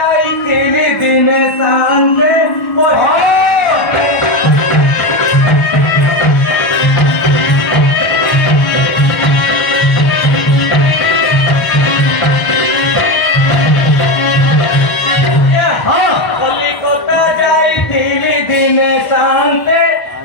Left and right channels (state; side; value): late; right; 1.2 ms